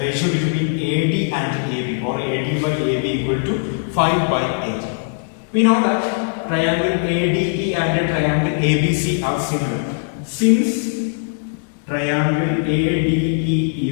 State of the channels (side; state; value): right; silent; digital silence